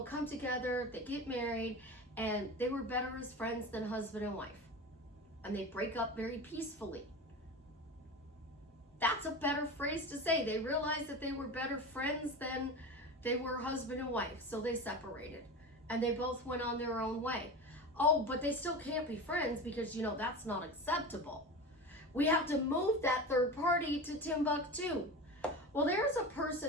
come together, they get married, and they were better as friends than husband and wife. And they break up very peacefully. That's a better phrase to say. They realized that they were better friends than they were husband and wife, so they separated. And they both went on their own way. Oh, but they still can't be friends because, that's not acceptable. We have to move that third party to Timbuktu. Well, there's a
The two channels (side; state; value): both; normal; correlation 0.28